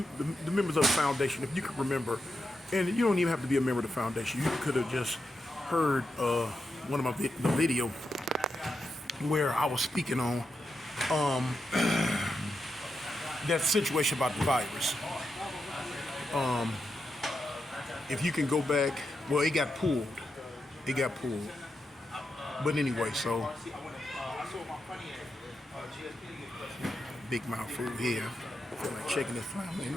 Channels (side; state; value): both; normal; correlation 0.86